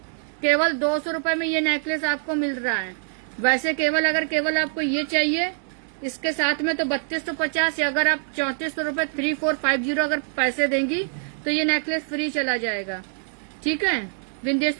केवल 200 रुपए में ये नेकलेस आपको मिल रहा है। वैसे अगर केवल आपको ये चाहिए इसके साथ में तो 3250, या अगर आप 3400 रुपए 3450 अगर पैसे देंगी तो ये नेकलेस फ्री चला जाएगा। ठीक है,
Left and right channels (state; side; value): silent; left; digital silence